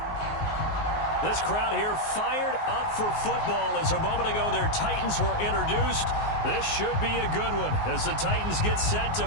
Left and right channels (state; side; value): late; right; 19 ms